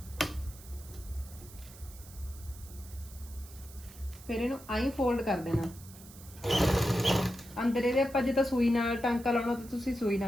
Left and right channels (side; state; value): right; noise; hiss, 19 dB below the sound